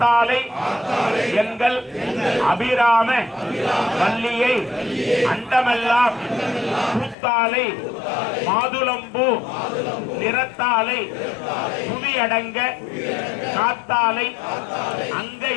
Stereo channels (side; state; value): right; drops out; at 7.2 s